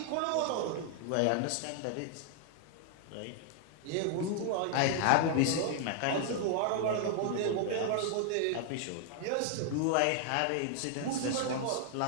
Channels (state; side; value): different; both; correlation 0.00